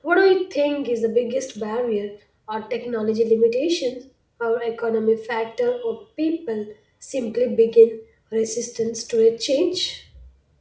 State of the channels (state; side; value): identical; both; correlation 1.00